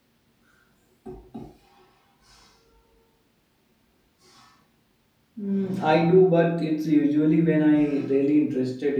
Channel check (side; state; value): both; identical; correlation 1.00